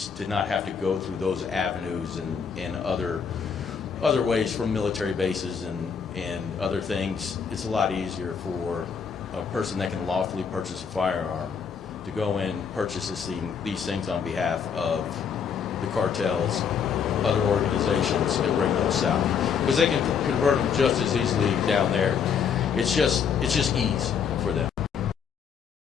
to not have to go through those avenues and other ways from military bases and other things. It's a lot easier for a person that can lawfully purchase a firearm to go in, purchase these things on behalf of the cartels, other organizations, and bring those south, because they can convert them just as easily down there. It's just ease for them.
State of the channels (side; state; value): right; quieter; 6.8 dB